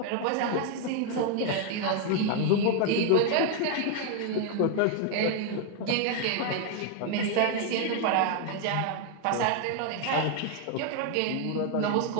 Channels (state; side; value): different; both; correlation 0.00